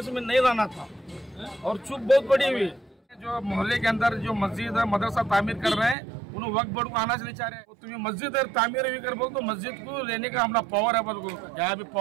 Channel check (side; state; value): left; drops out; at 6.0 s